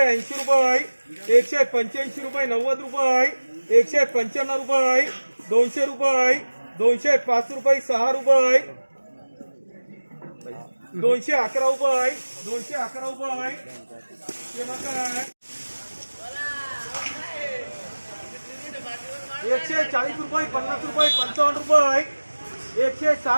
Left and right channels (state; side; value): inverted; both; correlation -1.00